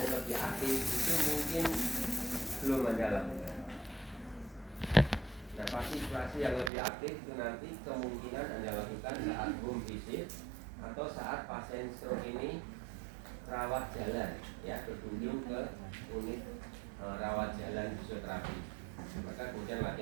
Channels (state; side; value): drops out; left; at 6.7 s